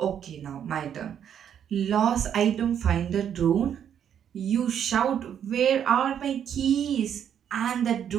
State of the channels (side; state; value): left; quieter; 8.9 dB